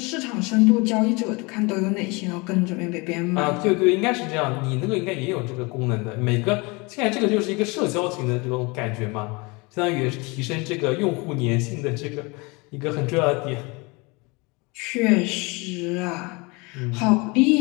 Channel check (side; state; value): right; quieter; 27.0 dB